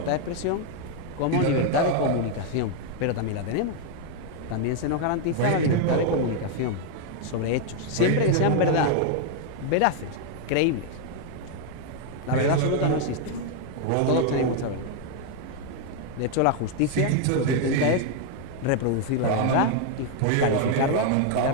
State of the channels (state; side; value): different; both; correlation 0.00